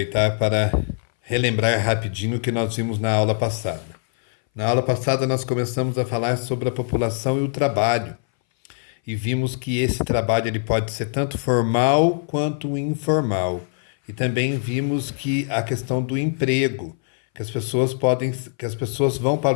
para relembrar rapidinho o que nós vimos na aula passada. Na aula passada, nós começamos a falar sobre a população e o trabalho, e vimos que esse trabalho ele pode ser tanto formal quanto informal. E também vimos que a questão do emprego, que as pessoas vão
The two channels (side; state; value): right; silent; 61 dB below the other